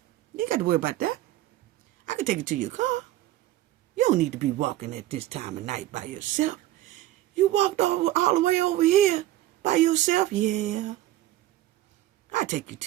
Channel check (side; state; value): left; quieter; 14.8 dB